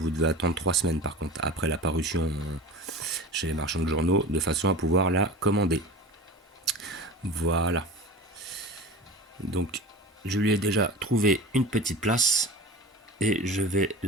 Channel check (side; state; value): both; normal; correlation 0.34